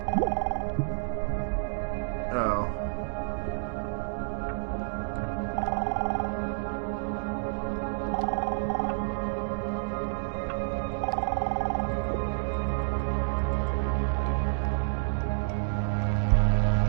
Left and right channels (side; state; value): left; silent; digital silence